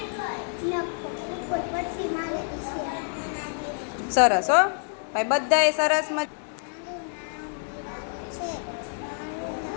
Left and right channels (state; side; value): silent; right; digital silence